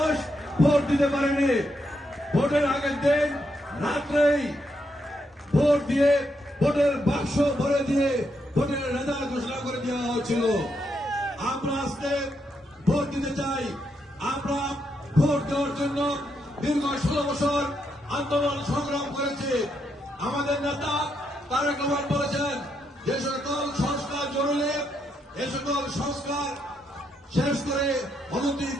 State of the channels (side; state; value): both; normal; correlation 0.79